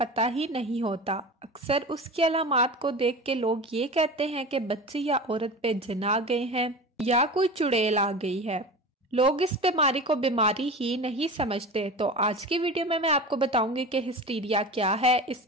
ही नहीं होता। अक्सर उसकी अलामात को देख के लोग ये कहते हैं कि बच्ची या औरत पे जिन आ गए हैं या कोई चुड़ैल आ गई है। लोग इस बीमारी को बीमारी ही नहीं समझते। तो आज की वीडियो में मैं आपको बताऊंगी कि हिस्टीरिया क्या है,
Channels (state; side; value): normal; both; correlation 0.31